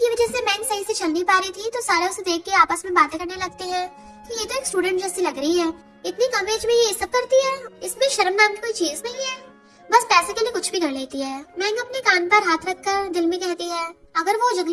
वजह से मैंग सही से चल नहीं पा रही थी तो सारे उसे देख के आपस में बातें करने लगते हैं कि ये तो एक स्टूडेंट जैसी लग रही है, इतनी कम एज में ये सब करती है, इसमें शर्म नाम की कोई चीज नहीं है, बस पैसे के लिए कुछ भी कर लेती है। मैंग अपने कान पर हाथ रखकर दिल में कहती है अगर वो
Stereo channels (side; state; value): both; identical; correlation 1.00